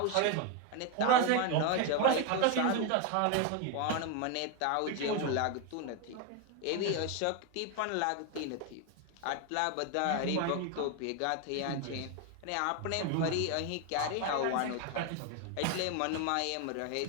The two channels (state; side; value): different; both; correlation 0.01